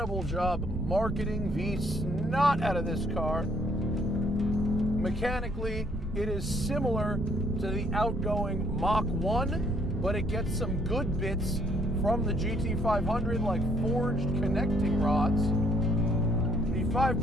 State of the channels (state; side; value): normal; both; correlation 0.66